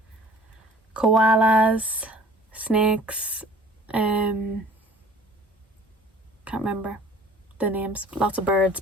koalas, snakes, can't remember the names. Lots of birds,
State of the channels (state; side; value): normal; both; correlation 0.49